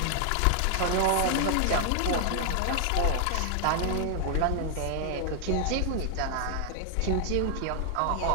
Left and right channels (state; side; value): different; both; correlation 0.00